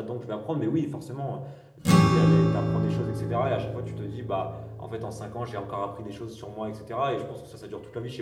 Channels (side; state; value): both; identical; correlation 1.00